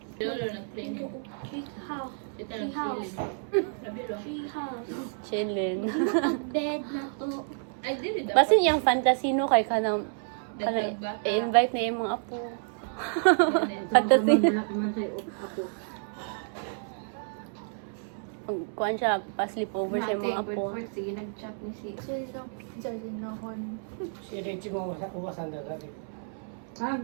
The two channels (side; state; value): left; silent; 58 dB below the other